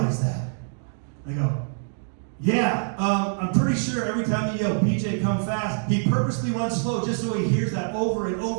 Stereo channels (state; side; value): silent; left; digital silence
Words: that. I go, yeah, I'm pretty sure every time you yell, BJ, come fast, he purposely runs slow just so he hears that over and